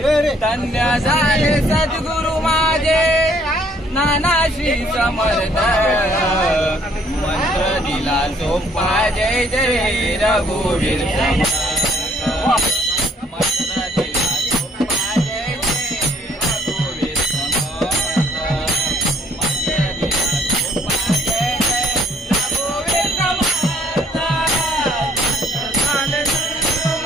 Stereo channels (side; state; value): both; normal; correlation 0.63